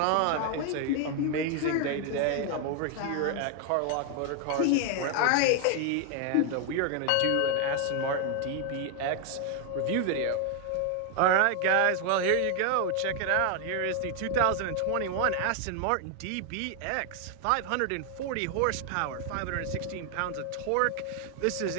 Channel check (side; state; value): both; different; correlation 0.01